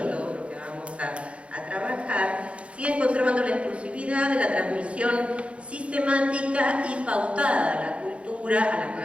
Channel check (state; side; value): late; left; 0.061 ms